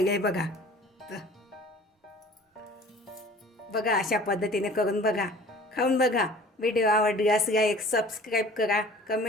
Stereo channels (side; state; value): both; normal; correlation 0.47